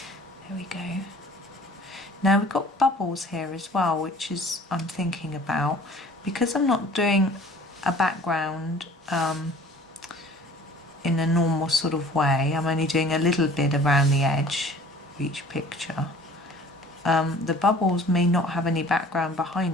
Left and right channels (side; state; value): both; normal; correlation 0.49